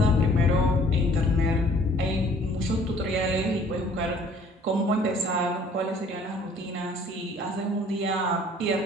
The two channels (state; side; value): normal; both; correlation 0.56